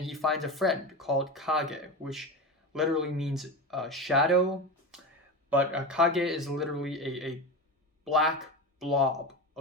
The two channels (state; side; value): normal; both; correlation 0.23